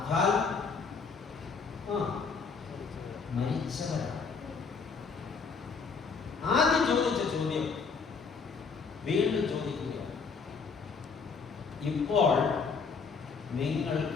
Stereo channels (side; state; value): right; quieter; 5.2 dB